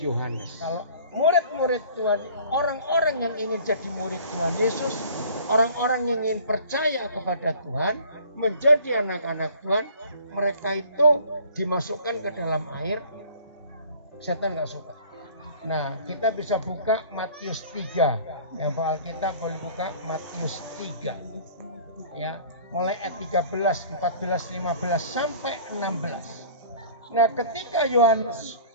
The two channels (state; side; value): inverted; both; correlation -0.48